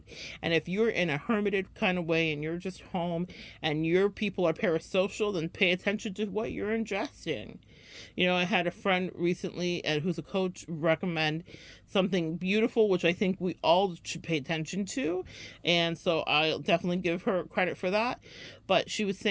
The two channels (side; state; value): both; identical; correlation 1.00